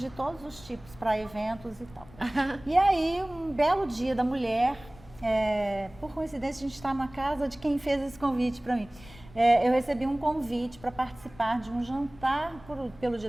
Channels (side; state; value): left; noise; rumble, 21 dB below the sound